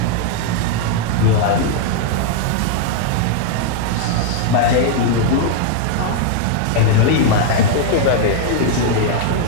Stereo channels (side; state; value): both; different; correlation 0.00